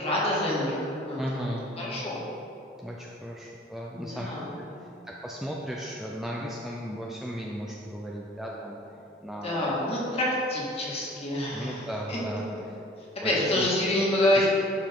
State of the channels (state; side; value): normal; both; correlation 0.50